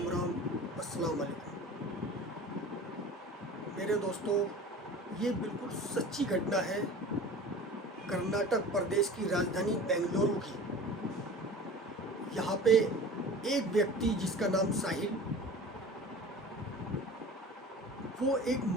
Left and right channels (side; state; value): both; normal; correlation 0.39